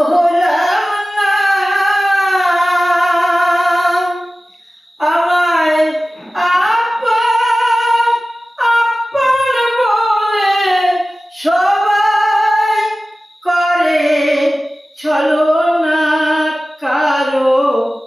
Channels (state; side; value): normal; both; correlation 0.96